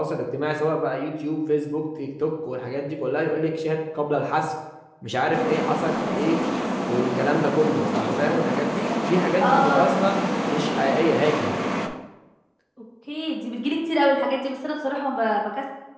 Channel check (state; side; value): identical; both; correlation 1.00